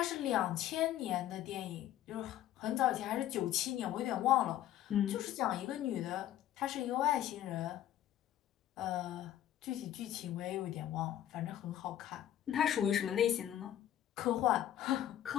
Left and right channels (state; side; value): quieter; right; 12.1 dB